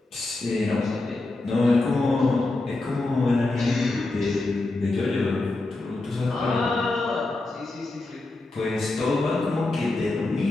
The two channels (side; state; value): right; quieter; 3.0 dB